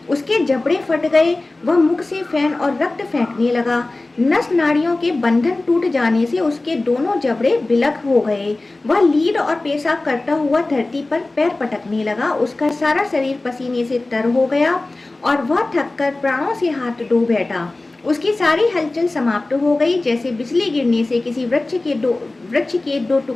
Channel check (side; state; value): right; quieter; 3.0 dB